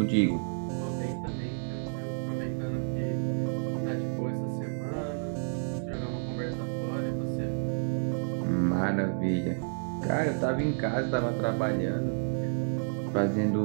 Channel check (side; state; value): left; silent; 58 dB below the other